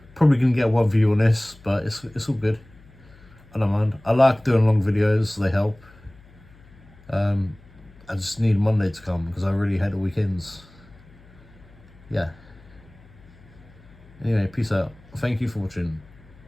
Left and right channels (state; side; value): noise; left; hum, 25 dB below the sound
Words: Probably gonna get one view on this, but it's all good. I don't mind. I like doing long videos. They help. I just need Monday to come because I really hate the weekends. Yeah. Anyway, peace out. Thank you for watching.